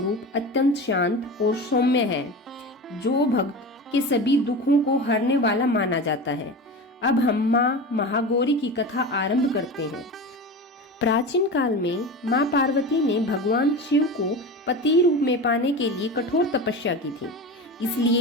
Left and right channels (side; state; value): both; normal; correlation 0.28